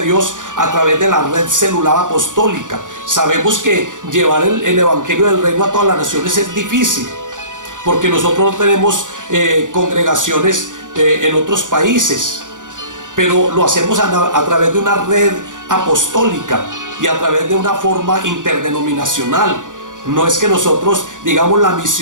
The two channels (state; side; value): late; left; 0.87 ms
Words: Dios a través de la red celular apostólica. Sabemos que llevar el evangelio del reino a todas las naciones es difícil, porque nosotros no tenemos congregaciones en otros países, pero lo hacemos a través de una red apostólica y a través de una forma interdenominacional. No es que nosotros, digamos, la